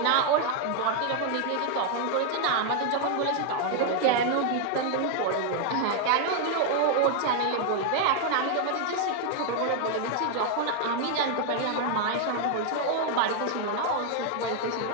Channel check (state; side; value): different; both; correlation 0.00